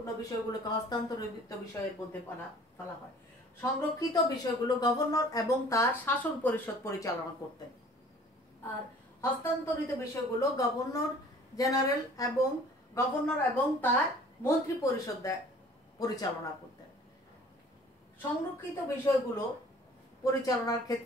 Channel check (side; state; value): both; normal; correlation 0.50